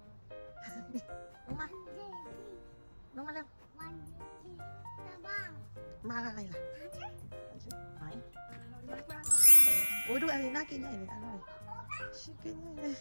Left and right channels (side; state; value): both; inverted; correlation -1.00